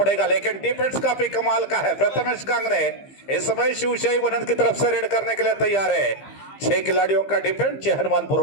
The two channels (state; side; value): late; right; 15 ms